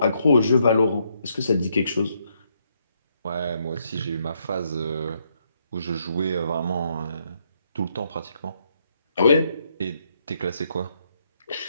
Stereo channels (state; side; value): inverted; both; correlation -0.75